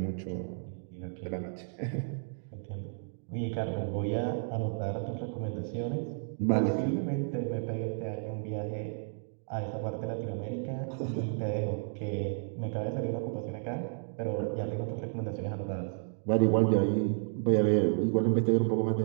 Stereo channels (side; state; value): left; silent; digital silence